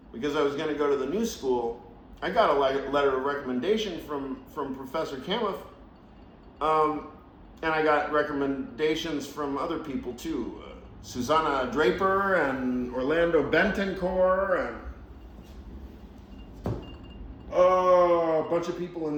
because I was going to go to the new school, I got a letter of recommendation from Professor Kamuth, and I got recommendations from other people too. Susanna Draper and Orlando Bentoncourt and a bunch of people in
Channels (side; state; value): both; identical; correlation 1.00